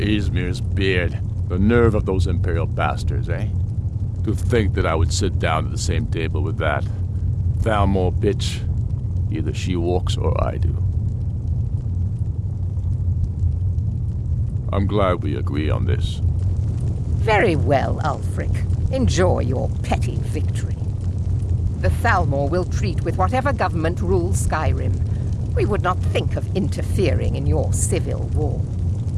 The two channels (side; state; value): both; identical; correlation 1.00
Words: beard, the nerve of those Imperial bastards, eh? To think that I would sit down at the same table with that Thalmor bitch. Either she walks or I do. I'm glad we agree on this. Very well, Ulfric. Enjoy your petty victory. The Thalmor will treat with whatever government rules Skyrim. We would not think of interfering in your civil war.